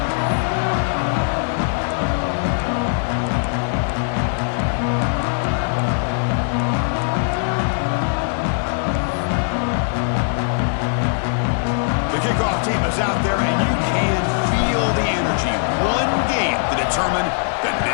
Out there, and you can feel the energy. One game to determine the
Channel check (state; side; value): silent; right; 65 dB below the other